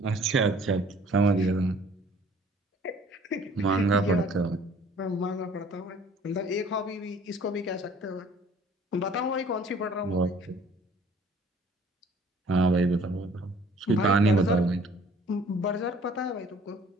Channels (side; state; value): both; normal; correlation 0.54